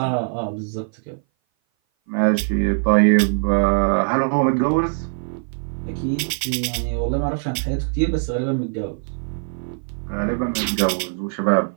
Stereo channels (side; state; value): left; silent; 58 dB below the other